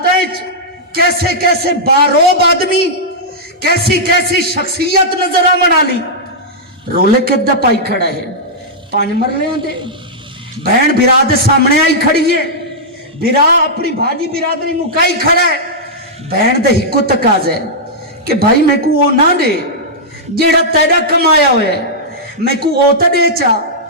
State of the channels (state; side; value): normal; both; correlation -0.10